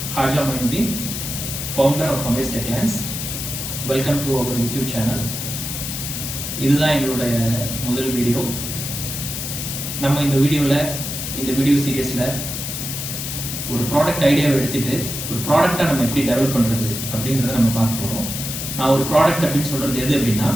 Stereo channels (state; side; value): noise; left; hiss, 5 dB below the sound